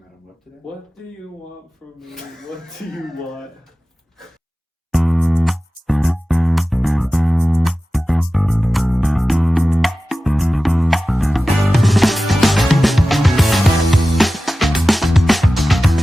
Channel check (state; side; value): normal; both; correlation 0.95